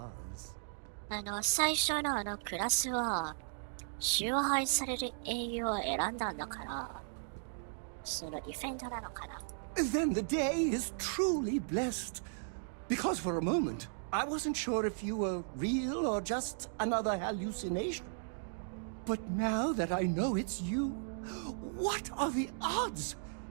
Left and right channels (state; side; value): silent; left; digital silence